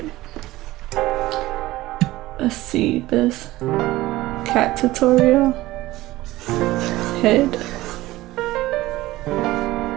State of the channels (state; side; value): quieter; left; 17.6 dB